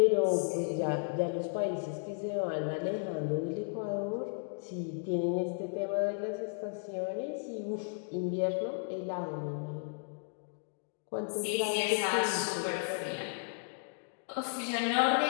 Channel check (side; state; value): right; silent; digital silence